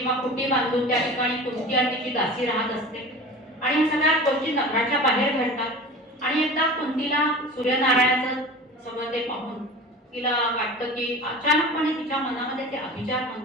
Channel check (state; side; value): normal; both; correlation 0.36